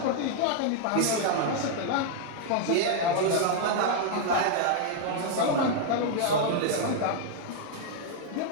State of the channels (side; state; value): both; different; correlation 0.00